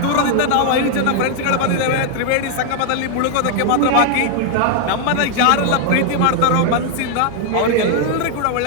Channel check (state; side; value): different; both; correlation 0.00